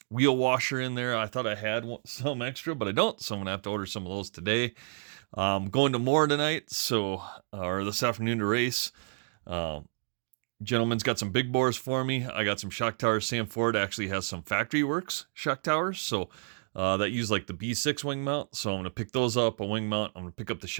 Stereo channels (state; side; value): silent; left; digital silence